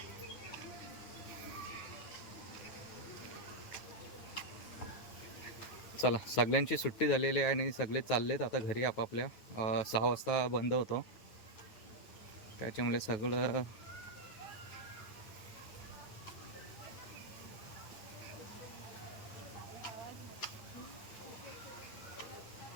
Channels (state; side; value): late; right; 9.4 ms